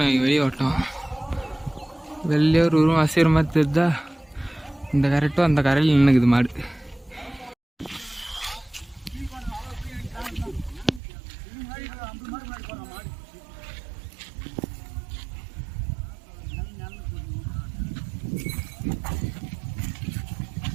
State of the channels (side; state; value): left; drops out; at 11.0 s